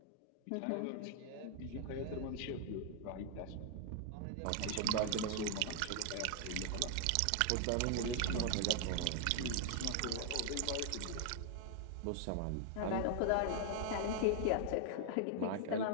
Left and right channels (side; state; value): both; different; correlation 0.00